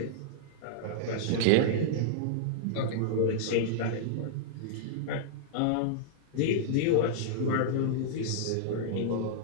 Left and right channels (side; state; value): both; different; correlation -0.02